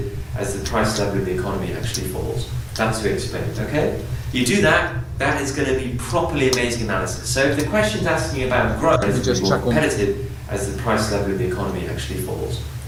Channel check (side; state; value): both; identical; correlation 1.00